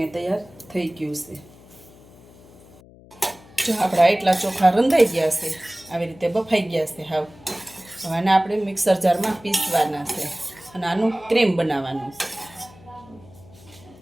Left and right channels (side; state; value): left; noise; hum, 23 dB below the sound